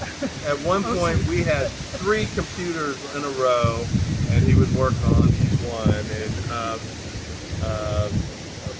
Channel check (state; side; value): identical; both; correlation 1.00